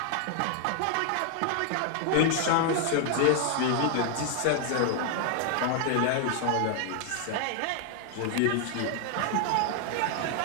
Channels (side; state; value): both; different; correlation 0.00